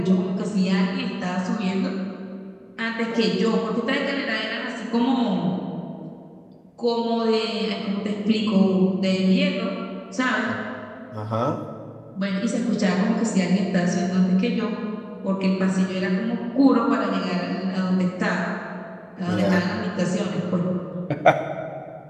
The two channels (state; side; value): identical; both; correlation 1.00